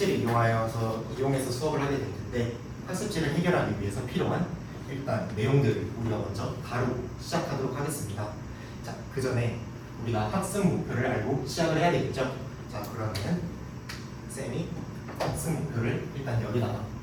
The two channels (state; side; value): identical; both; correlation 1.00